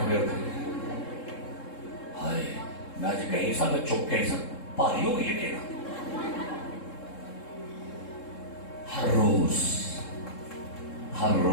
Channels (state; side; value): late; right; 3.7 ms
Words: ہوتے ہائے میں آج کہیں سا میں چپ کہیں سا پاری ہو گئی ہے کہنا ہر